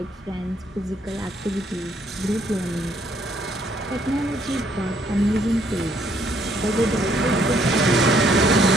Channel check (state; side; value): normal; both; correlation 0.67